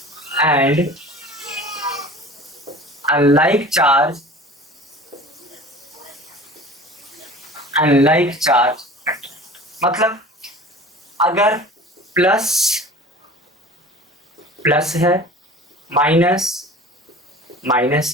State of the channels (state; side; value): normal; both; correlation 0.40